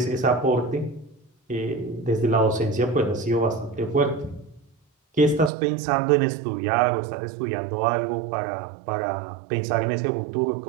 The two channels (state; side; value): drops out; left; at 5.5 s